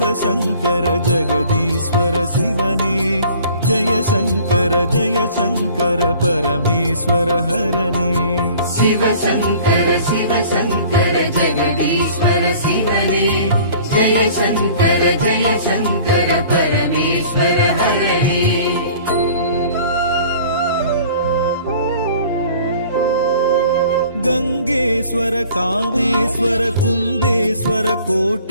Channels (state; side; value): inverted; both; correlation -0.49